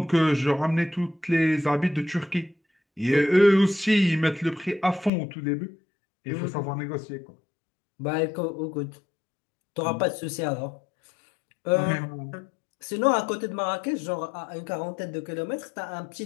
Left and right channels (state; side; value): drops out; right; at 5.1 s